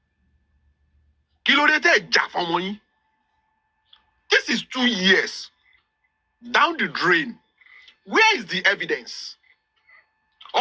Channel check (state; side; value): identical; both; correlation 1.00